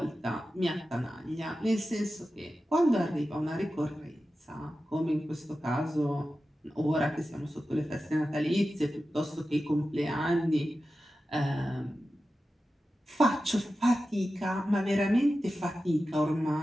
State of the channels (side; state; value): both; normal; correlation 0.93